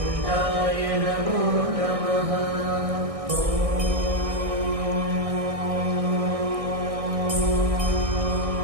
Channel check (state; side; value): late; left; 1.6 ms